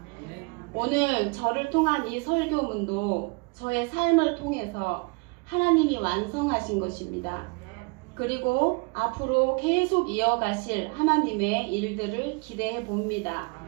오늘 저를 통한 이 설교문도 저의 삶을 통해서 하나님이 완성하신 것입니다. 그리고 앞으로 계속 이어가실 하나님의 일들을 기대해 봅니다.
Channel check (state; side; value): quieter; left; 29.4 dB